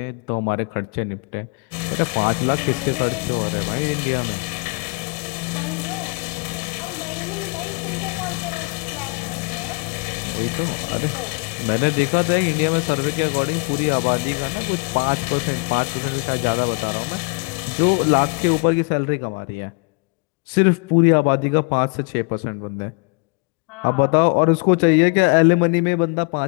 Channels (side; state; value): right; quieter; 33.7 dB